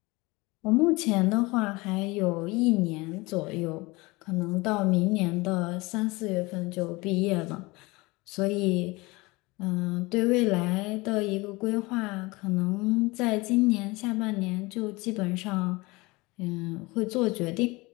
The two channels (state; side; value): quieter; right; 23.4 dB